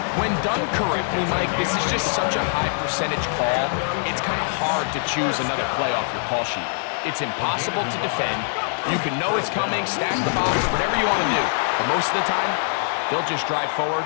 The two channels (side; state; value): right; silent; digital silence